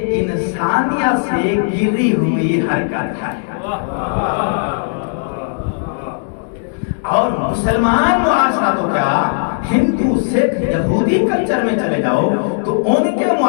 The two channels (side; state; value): right; silent; digital silence